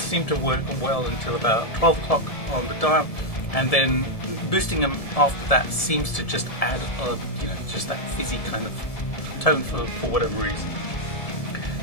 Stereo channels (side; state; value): right; late; 1.7 ms